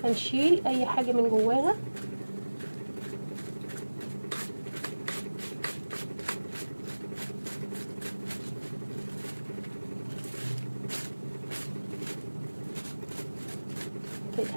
هنشيل اي حاجه من جواها. كده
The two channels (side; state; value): both; inverted; correlation -1.00